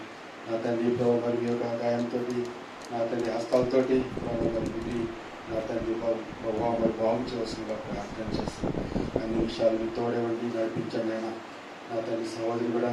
నా తండ్రి ప్రభావ మరి మీ యొక్క గాయంతో నా తండ్రి హస్తాలతోటి ప్రభావ మరి విధి నా తండ్రి ప్రభావ మరి భావించవలసిందిగా ప్రార్థన చేస్తాం. అన్ని విషయాలు మీ తోడేవండి నడిపించండి అయినా. నా తండ్రి సహోదరి కూడా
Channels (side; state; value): both; identical; correlation 1.00